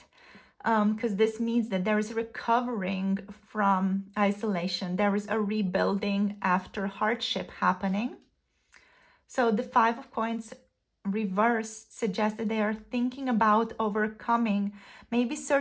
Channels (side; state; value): both; identical; correlation 1.00